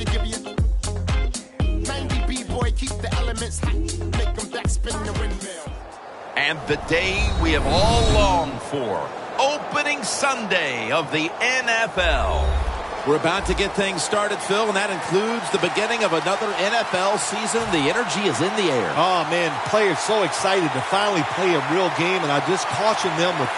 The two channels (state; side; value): identical; both; correlation 1.00